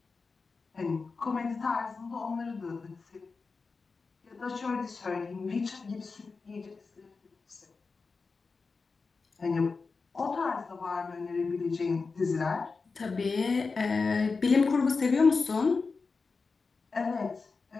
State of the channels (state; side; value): quieter; right; 4.4 dB